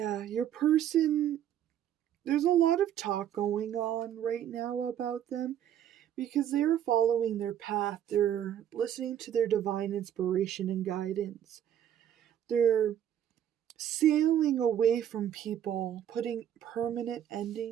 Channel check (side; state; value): left; quieter; 10.3 dB